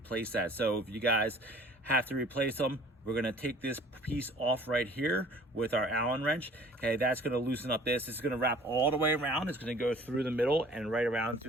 that. So if you guys have to replace them, we're gonna take this piece off right here with our Allen wrench. Okay, that's gonna loosen up this. It's gonna wrap all the way around. It's gonna go through the middle and right around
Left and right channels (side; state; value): both; normal; correlation 0.50